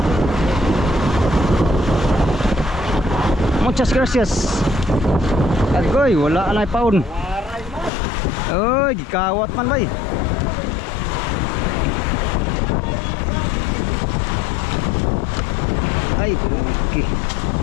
Muchas gracias. Agoy, wala na paun. Uy, gikawat man bay. Ay, okay.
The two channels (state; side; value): drops out; right; at 7.9 s